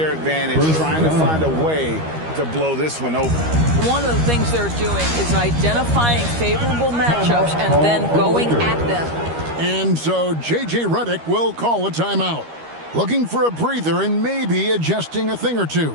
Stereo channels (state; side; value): late; left; 13 ms